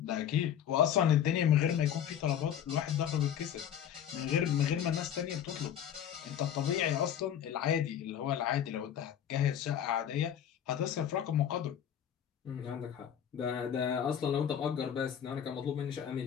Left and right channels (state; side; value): quieter; right; 9.5 dB